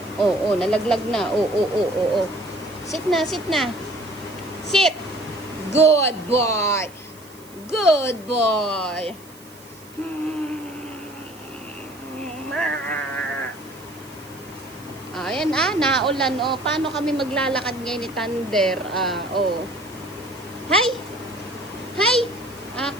Nalaglag na. Oo. Sit na. Sit! Good boy! Good boy! Ayan naulan paano kami maglalakad ngayon ni Thunder? Hi!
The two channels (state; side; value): noise; right; hiss, 23 dB below the sound